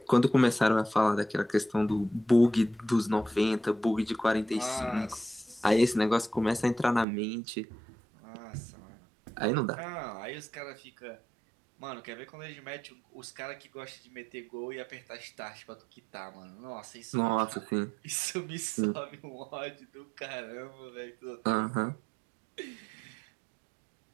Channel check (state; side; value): drops out; left; at 7.1 s